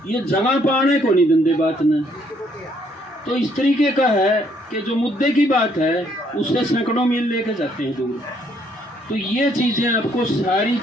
ये जगह पाने को नहीं दंदे बात ने। तो इस तरीके का है कि जो मुद्दे की बात है उससे सैकड़ों मील लेके जाते हैं दूर। तो ये चीज़ें आपको सारी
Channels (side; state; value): both; normal; correlation 0.68